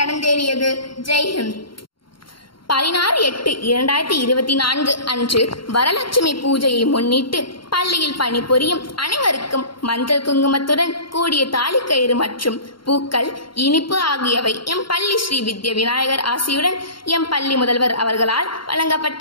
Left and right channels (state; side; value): late; right; 0.73 ms